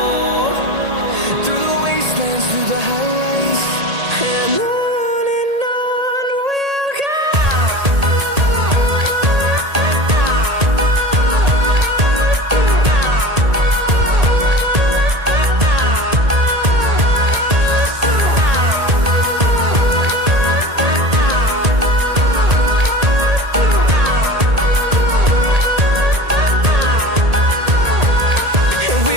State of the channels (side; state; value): left; late; 1.8 ms